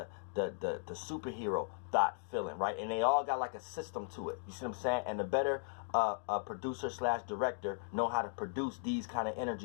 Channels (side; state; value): right; silent; digital silence